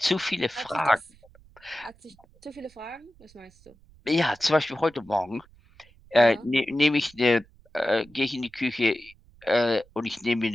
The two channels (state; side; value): noise; right; rumble, 28 dB below the sound